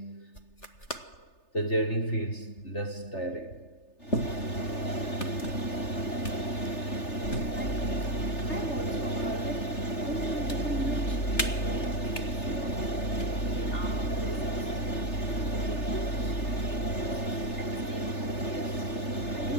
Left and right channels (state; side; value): late; right; 3.3 ms